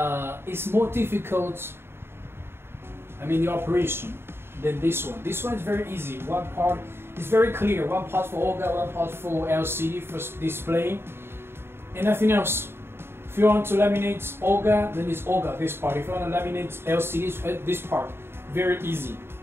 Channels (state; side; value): late; left; 0.11 ms